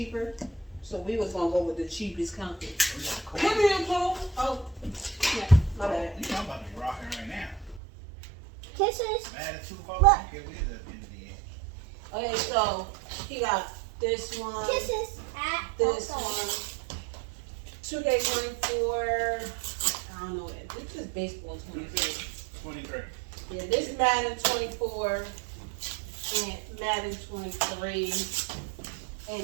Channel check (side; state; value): left; drops out; at 7.8 s